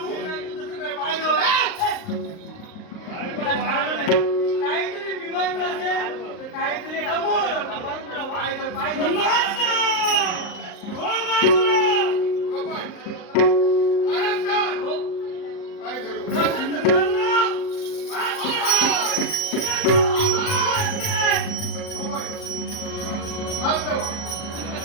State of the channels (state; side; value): late; right; 38 ms